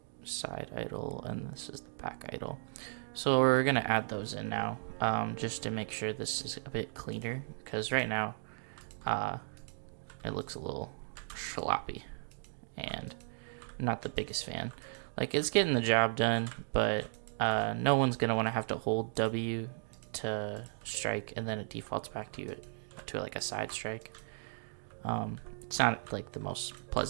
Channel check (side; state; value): left; silent; digital silence